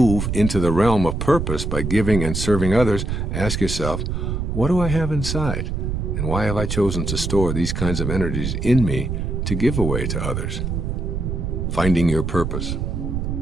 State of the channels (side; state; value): right; noise; rumble, 2 dB below the sound